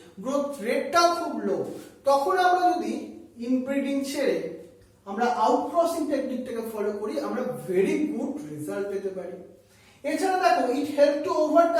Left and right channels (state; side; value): identical; both; correlation 1.00